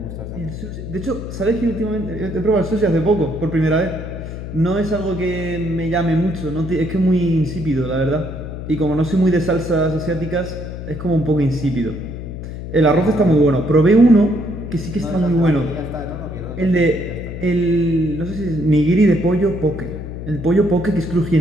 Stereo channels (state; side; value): noise; left; hum, 8 dB below the sound